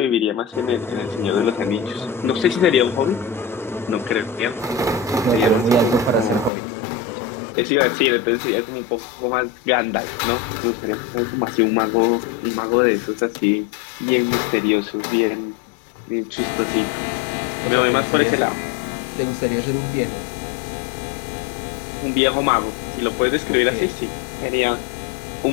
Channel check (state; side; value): drops out; right; at 6.5 s